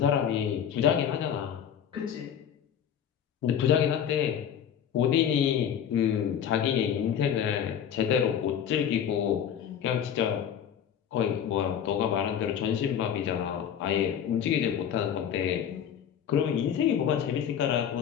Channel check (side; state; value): right; quieter; 8.9 dB